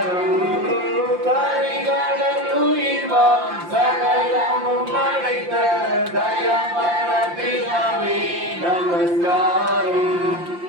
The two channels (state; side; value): late; left; 5.7 ms